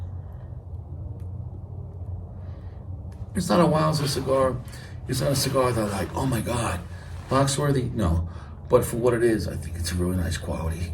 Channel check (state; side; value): identical; both; correlation 1.00